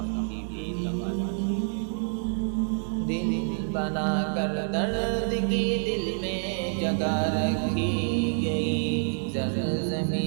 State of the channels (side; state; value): left; silent; digital silence